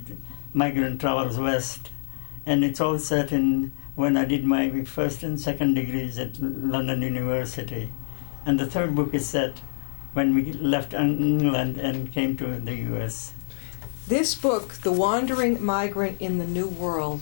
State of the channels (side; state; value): right; silent; digital silence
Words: Migrant Travels West, and it's all set in when I did my first and second degrees at London University. And the third book is set when we left England and came to the US. This book, The Wandering Migrant in the New